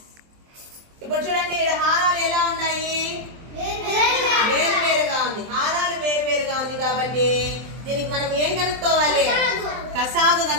ఇప్పుడు చూడండి ఇక్కడ హారాలు ఎలా ఉన్నాయి? వేరువేరుగా ఉంది. హారాలు వేరువేరుగా ఉంది కాబట్టి దీనికి మనం ఏం కనుక్కోవాలి? కసాగు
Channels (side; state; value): left; late; 23 ms